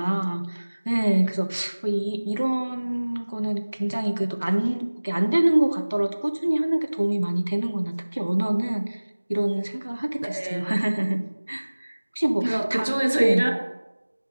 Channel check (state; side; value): inverted; both; correlation -1.00